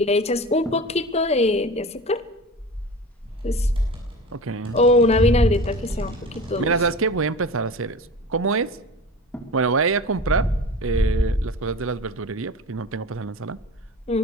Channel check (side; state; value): both; normal; correlation 0.34